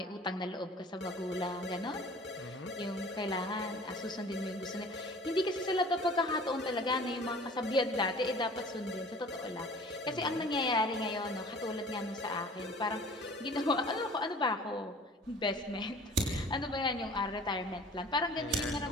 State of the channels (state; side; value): normal; both; correlation 0.46